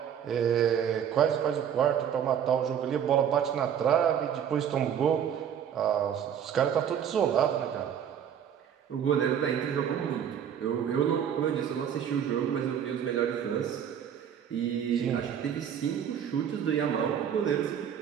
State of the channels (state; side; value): quieter; left; 8.8 dB